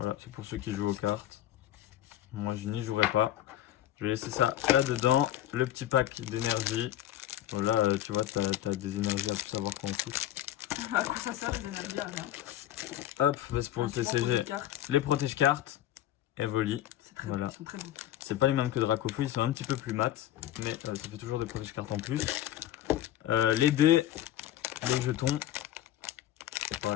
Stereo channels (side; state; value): right; quieter; 12.7 dB